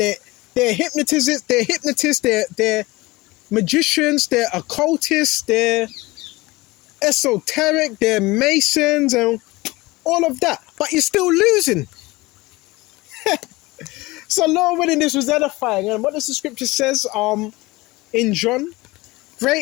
hypnotists, they're magicians, they're occultists, they're esoteric, they're masons, and all of that. But you're still losing. So Lord willing, this was edifying. And what does the scripture says in John?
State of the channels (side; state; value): right; quieter; 21.3 dB